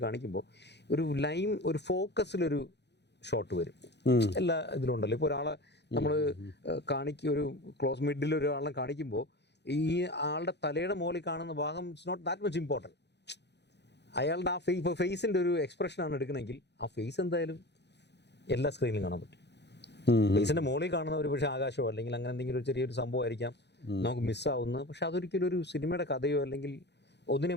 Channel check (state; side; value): late; right; 0.50 ms